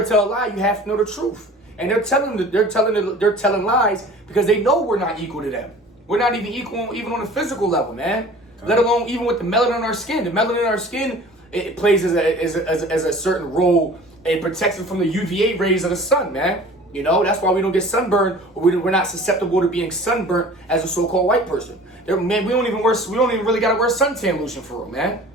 to tell a lie, you have to know the truth. And they're telling lies because they know we're not equal to them. We're not even equal even on a physical level, man. Let alone even with the melanin in our skin. The melanin in our skin, it plays as a certain role. It protects us from the UVA rays of the sun, man. That's why we don't get sunburned, or we're not susceptible to being sunburnt as a so-called white person. Man, we don't even really gotta wear suntan lotion for them, man.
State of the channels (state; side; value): normal; both; correlation 0.45